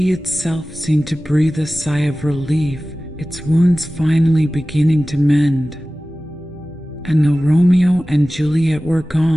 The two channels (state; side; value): normal; both; correlation 0.97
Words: itself seemed to breathe a sigh of relief, its wounds finally beginning to mend. And though Romeo and Juliet were